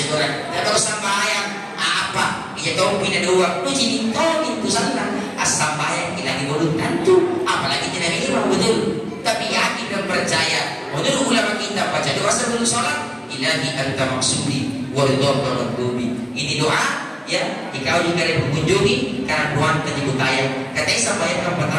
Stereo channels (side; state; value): both; identical; correlation 1.00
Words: orang, tidak tahu sambayang apa? Ia tahu pindah dua, lu jadi tahu itu salah. Sambayang kita dibodoh tentu, apalagi tidak imam, betul. Tapi yakin dan percaya. Menurut ulama kita baca doa sebelum sholat, ilahi anta maksudi waridhaka madlubi. Ini doa ya, jika juga ada mengunjungi karena doa tersebut tayang. Katanya sampai